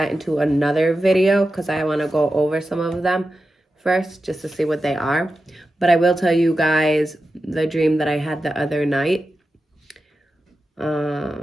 into another video because I want to go over some of them first just to see what they are. But I will tell you guys the dream that I had the other night.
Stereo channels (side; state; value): both; normal; correlation 0.91